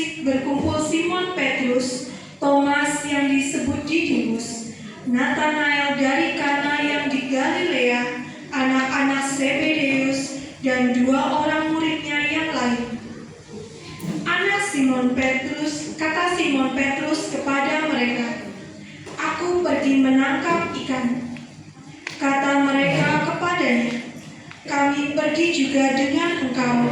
Simon Petrus, Thomas yang disebut Didimus, Nathanael dari Kana yang di Galilea, anak-anak Zebedeus, dan 2 orang muridnya yang lain. Kata Simon Petrus kepada mereka, "Aku pergi menangkap ikan." Kata mereka kepadanya, "Kami pergi juga dengan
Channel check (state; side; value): identical; both; correlation 1.00